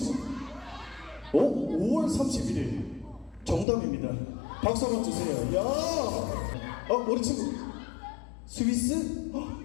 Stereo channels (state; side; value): drops out; right; at 3.7 s